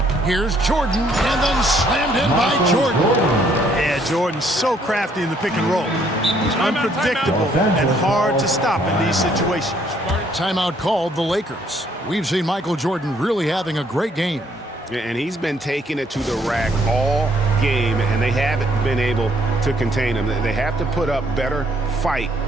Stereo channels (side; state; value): both; normal; correlation 0.66